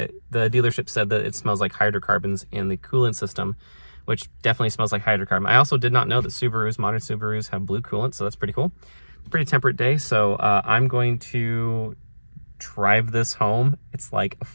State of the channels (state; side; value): inverted; both; correlation -1.00